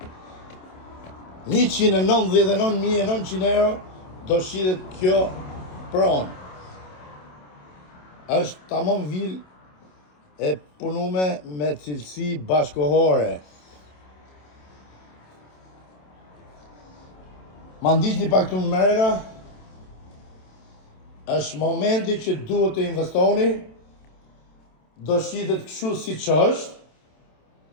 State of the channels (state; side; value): late; right; 27 ms